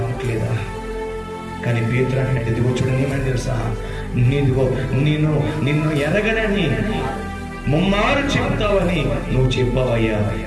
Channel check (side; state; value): both; identical; correlation 1.00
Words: కానీ పేతురు అంటున్నాడు, ఇదిగో చూడండి, ఏమని తెలుసా, నిన్ను ఎరగనని ముమ్మారు చెప్తావని నువ్వు చెప్పావయ్యా,